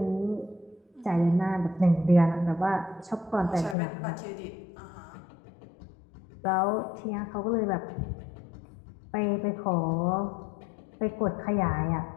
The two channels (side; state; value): right; drops out; at 3.8 s